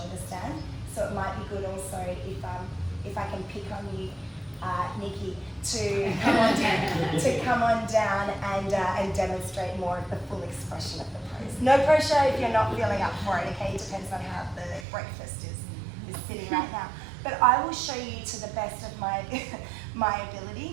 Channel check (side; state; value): left; drops out; at 14.9 s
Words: stand, so it might be good also if I can pick on you, Nikki, to come on down and demonstrate more of the full expression of the pose. No pressure if you're not feeling up for it, okay? It depends on how the breakfast is sitting right now. But I will show you to the best of my